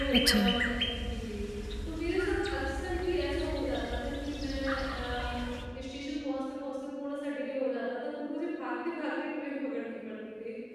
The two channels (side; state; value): both; identical; correlation 1.00